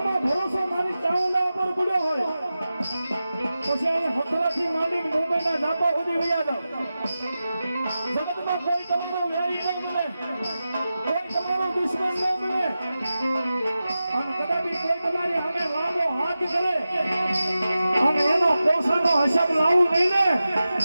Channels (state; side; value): inverted; both; correlation -0.93